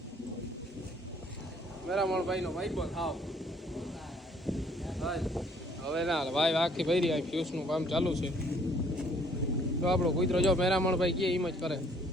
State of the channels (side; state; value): both; normal; correlation 0.61